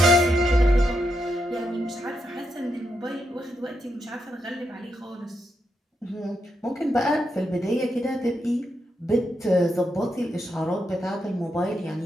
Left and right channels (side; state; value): both; normal; correlation 0.82